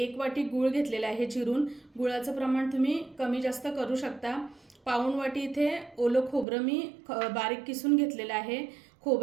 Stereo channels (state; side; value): drops out; left; at 6.5 s